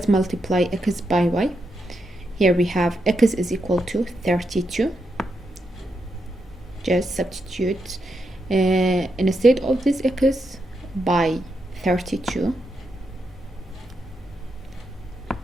multiply x by y. Here we have x is equal to 32. Just substitute instead of this x by 32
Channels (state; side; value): normal; both; correlation 0.83